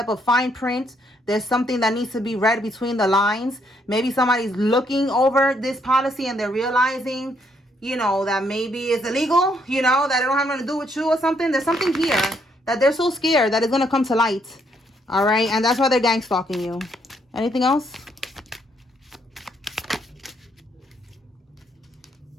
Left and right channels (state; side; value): normal; both; correlation 0.72